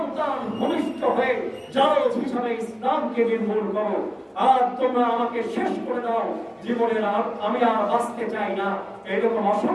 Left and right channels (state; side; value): identical; both; correlation 1.00